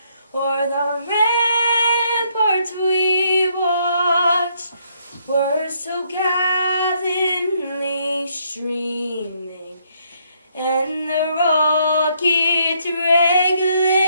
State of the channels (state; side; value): inverted; both; correlation -0.71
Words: O'er the ramparts we watched were so gallantly streaming, and the rockets red